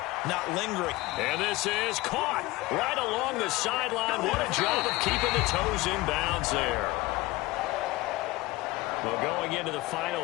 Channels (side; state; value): right; quieter; 20.2 dB